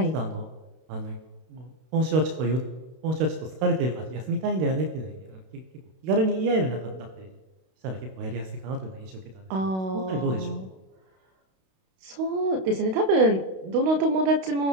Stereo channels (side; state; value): left; late; 32 ms